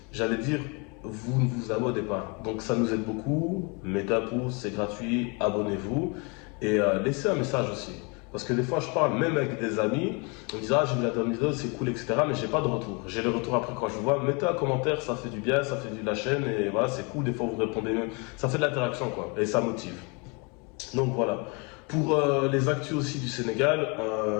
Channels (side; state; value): right; quieter; 31.8 dB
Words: j'allais dire, vous ne vous abonnez pas. Donc ça nous aide beaucoup. Mettez un pouce, c'est gratuit, abonnez-vous et laissez un message aussi. Parce que des fois, je parle même avec des amis, on me dit j'ai vu la dernière vidéo, c'est cool, etc. Mais j'ai pas de retour. J'ai le retour après quand je vous vois. Mettez un commentaire, ça fait du bien, ça fait de la chaîne et voilà, c'est cool. Des fois, vous répondez même. Ça fait de l'interaction, quoi. Et ça motive. Donc voilà. Pour les actus aussi du Sénégal,